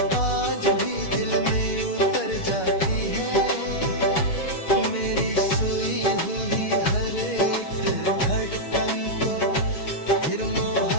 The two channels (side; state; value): right; late; 6.7 ms